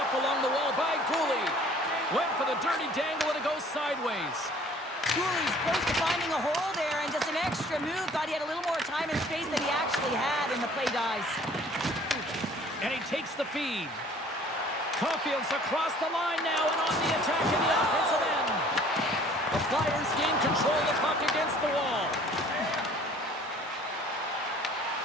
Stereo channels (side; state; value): both; normal; correlation 0.53